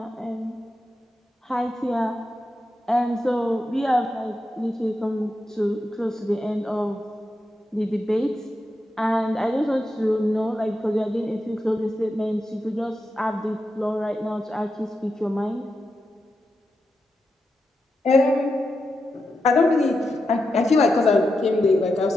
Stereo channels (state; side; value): normal; both; correlation 0.87